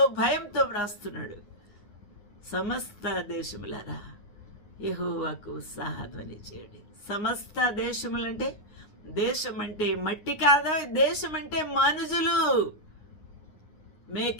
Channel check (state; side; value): late; right; 9.6 ms